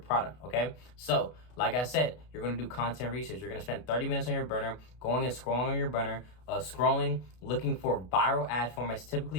okay? So, like I said, you're going to do content research. You're going to spend 30 minutes on your burner, going and scrolling on your burner, looking for viral ad formats,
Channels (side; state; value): right; late; 32 ms